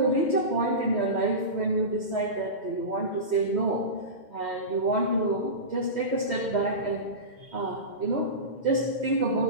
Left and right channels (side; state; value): right; late; 2.1 ms